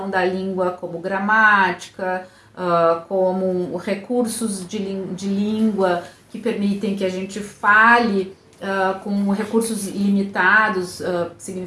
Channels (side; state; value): both; identical; correlation 1.00